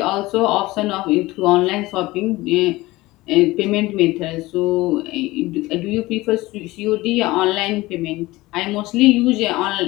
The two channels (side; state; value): right; quieter; 19.5 dB